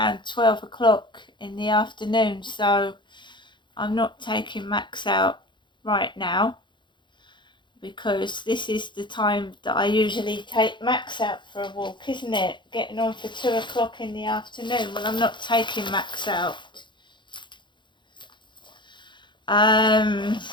12 o'clock in the afternoon, so I'm not taking Max out right now because this is the time that I usually take Max out for a walk, isn't it? Getting on for 2 o'clock in the afternoon. Well, I'm not taking Max out. I'm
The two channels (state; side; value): late; right; 0.23 ms